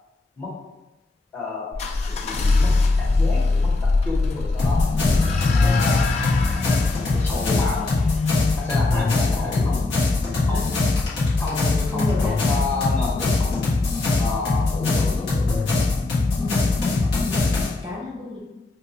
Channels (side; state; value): right; quieter; 3.0 dB